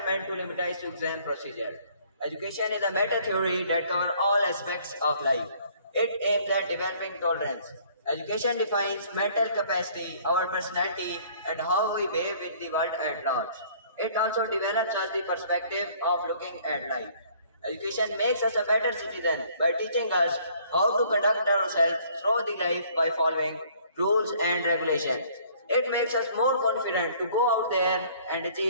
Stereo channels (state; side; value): inverted; both; correlation -0.58